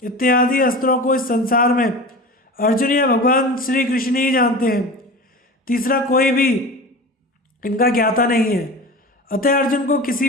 इत्यादि अस्त्रों को इस संसार में अर्जुन या भगवान श्री कृष्ण ही जानते हैं। तीसरा कोई भी इनका ज्ञाता नहीं है। अतः अर्जुन को किसी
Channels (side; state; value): both; normal; correlation 0.33